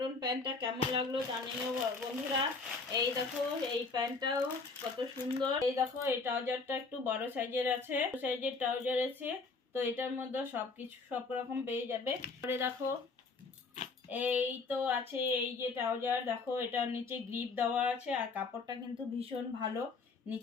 প্যান্টটা কেমন লাগলো জানিও বন্ধুরা। এই দেখো এই প্যান্টটাও কত সুন্দর। এই দেখো এই ট্রাউজারটা একটু বড় সাইজের আছে, সাইজের ট্রাউজার আছে। তো এটার মধ্যে সবকিছু সব রকম পেয়ে যাবে। পরে দেখো এই তো আছে এই যে ট্রাউজার, দেখো এটার নিচে গ্রিপ দেওয়া আছে আর কাপড়টা কিন্তু ভীষণ ভালো,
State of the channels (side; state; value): right; quieter; 4.2 dB